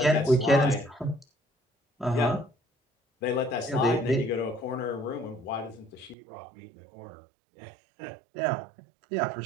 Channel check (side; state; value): left; drops out; at 6.2 s